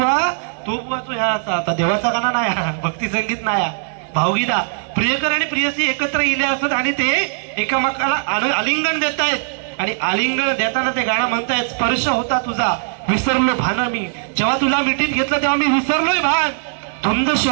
तो बुवा तो ह्या आता देवाचा गाणं नाही, भक्ती संगीत नाही, भावगीता. प्रियकर आणि प्रियसी एकत्र इले असत आणि ते एकामेकाला आलिंगन देत आहेत. आणि आलिंगन देताना ते गाणं म्हणतायत, स्पर्श होता तुझा विसरलो भान मी. जेव्हा तुला मिठीत घेतलं तेव्हा मी विसरलोय भान, धुंद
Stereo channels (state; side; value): silent; left; digital silence